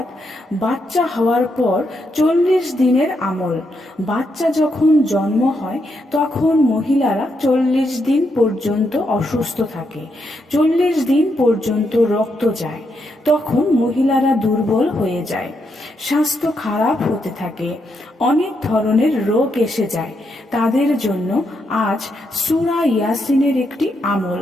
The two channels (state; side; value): normal; both; correlation 0.80